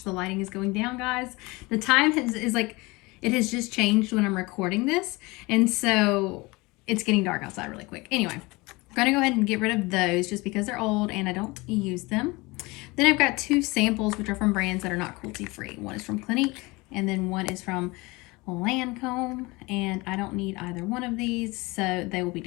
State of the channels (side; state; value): right; quieter; 23.7 dB